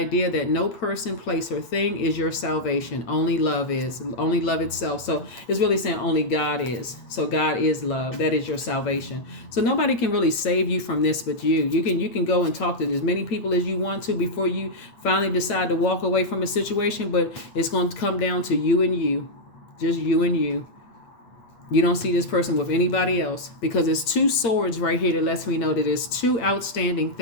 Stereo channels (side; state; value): right; late; 8.8 ms